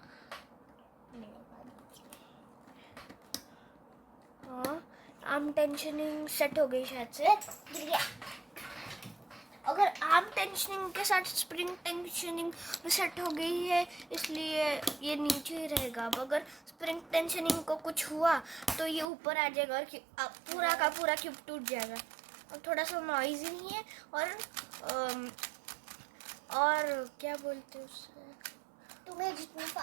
हाँ, आर्म टेंशनिंग सेट हो गई शायद से। अगर आर्म टेंशनिंग के साथ स्प्रिंग टेंशनिंग सेट हो गई है, इसलिए ये नीचे ही रहेगा। अब अगर स्प्रिंग टेंशनिंग को कुछ हुआ तो ये ऊपर आ जाएगा और पूरा का पूरा क्यूब टूट जाएगा। और थोड़ा सा नॉइजी नहीं है और क्या बोलते हैं उससे, तुम्हें जितना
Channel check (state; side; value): drops out; left; at 19.1 s